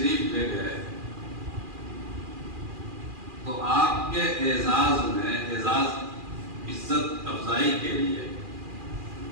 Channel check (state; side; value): late; left; 2.4 ms